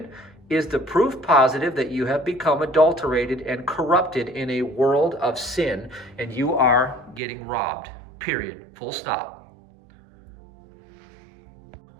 is the proof positive that you have become adulterated and corrupted in a world of sin, and you are getting robbed. Period. Full stop.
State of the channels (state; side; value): drops out; left; at 7.2 s